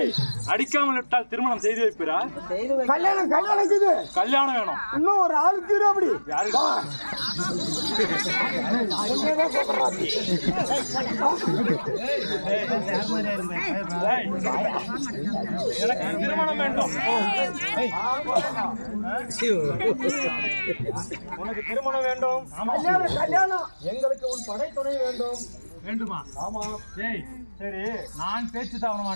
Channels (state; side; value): inverted; both; correlation -1.00